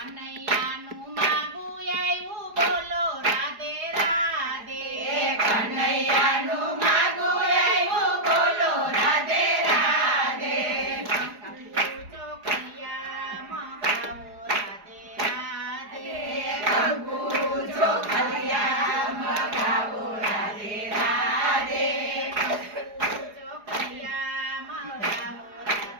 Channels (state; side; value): late; left; 4.8 ms